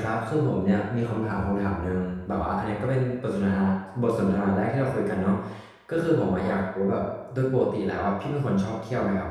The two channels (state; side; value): identical; both; correlation 1.00